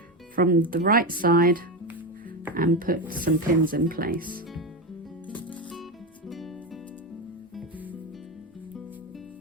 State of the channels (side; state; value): both; normal; correlation 0.14